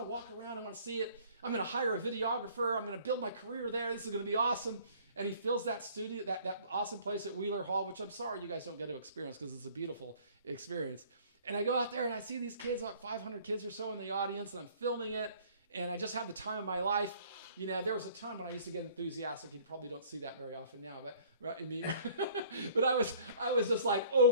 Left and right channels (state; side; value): inverted; both; correlation -0.54